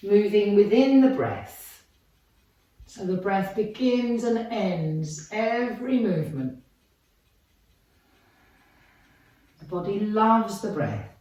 Moving within the breath. So the breath begins and ends every movement. The body loves the breath.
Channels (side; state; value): both; identical; correlation 1.00